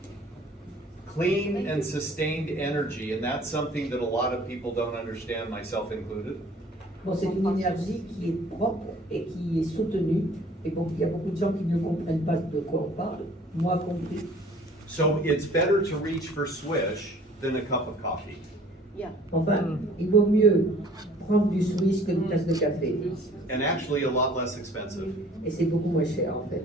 clean and sustained energy, and that's something that a lot of people don't understand, myself included. Bon, c'est une énergie qui est propre et qui est soutenue. Et bon, il y a beaucoup de gens qui ne comprennent pas de quoi on parle, moi compris. So it's better to reach for swish than a cup of coffee. Yeah. Enfin, il vaut mieux prendre du Swiss qu'une tasse de café. And actually a lot less expensive, Et c'est beaucoup moins cher, en fait.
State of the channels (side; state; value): both; normal; correlation 0.53